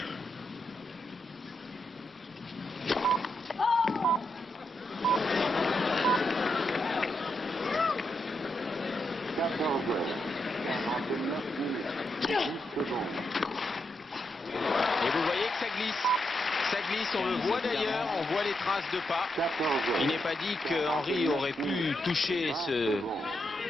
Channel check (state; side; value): normal; both; correlation 0.83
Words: 14h, 49 minutes, 10 secondes. Et vous voyez que ça glisse. Ça glisse, on le voit d'ailleurs, on voit les traces de pas. 14h. Il n'est pas dit que Henry aurait pu toucher ce